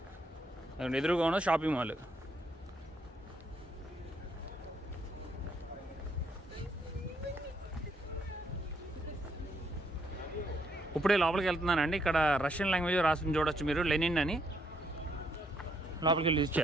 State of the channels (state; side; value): normal; both; correlation 0.73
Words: ఎదురుగా ఉన్న షాపింగ్ మాల్. ఇప్పుడే లోపలికి వెళ్తున్నానండి. ఇక్కడ రష్యన్ లాంగ్వేజ్ రాసి చూడొచ్చు మీరు, లెనిన్ అని. లోపలికి వెళ్ళి యూజ్